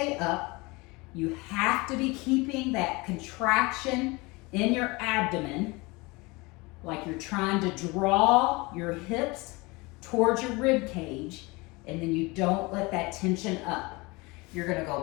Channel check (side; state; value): right; quieter; 24.8 dB